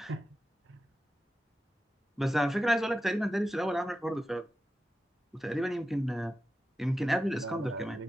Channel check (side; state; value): both; normal; correlation 0.92